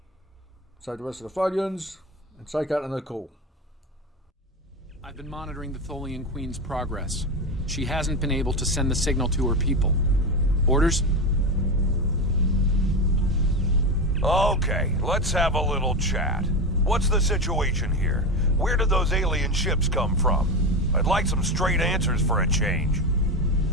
Save the rest of the Tholians, and take out the call. I've been monitoring the Tholian Queen's progress. She hasn't been able to send the signal to her people. Orders? Okay, let's have a little chat. What's the situation here? Where did those alien ships come from? I'd like some straight answers for a change.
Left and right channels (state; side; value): normal; both; correlation 0.18